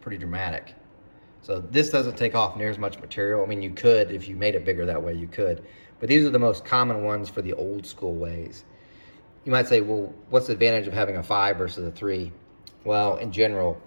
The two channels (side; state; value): both; inverted; correlation -1.00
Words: dramatic. So this doesn't take off near as much material. I mean, you could, if you made it bigger that way, you could. But these are the most common ones for the old school ways. You might say, well, what's the advantage of having a 5 versus a 3? Well, in general,